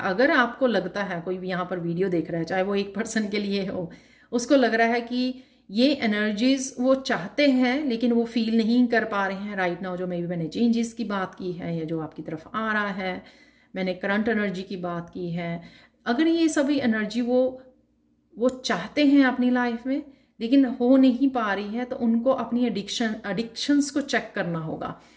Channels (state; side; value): identical; both; correlation 1.00